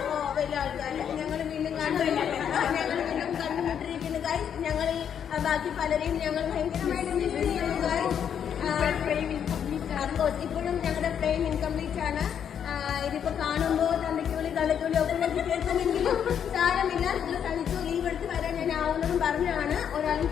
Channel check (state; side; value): quieter; right; 8.4 dB